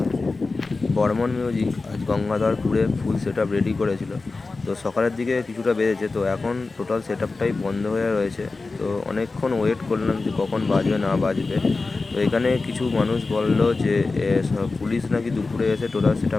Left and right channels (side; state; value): right; quieter; 3.8 dB